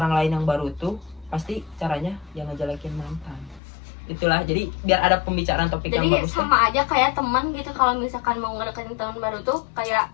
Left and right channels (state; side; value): drops out; right; at 3.6 s